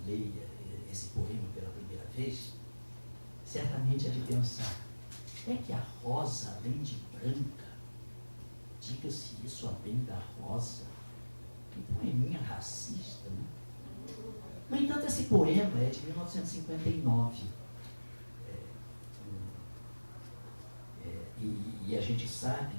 leia esse poema pela primeira vez, certamente é de pensar, é que a rosa, além de branca, diga-se isso além da rosa, que poeminha racista, né? No entanto, esse poema é de 1959. E a gente sabe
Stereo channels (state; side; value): inverted; both; correlation -1.00